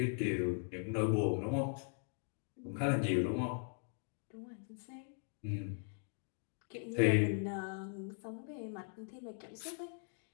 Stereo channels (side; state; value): right; silent; 51 dB below the other